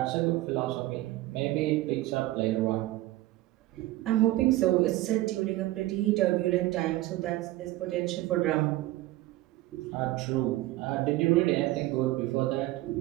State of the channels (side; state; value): left; quieter; 17.2 dB